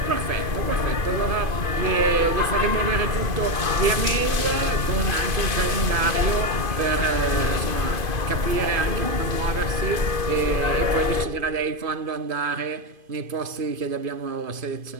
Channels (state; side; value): late; left; 2.5 ms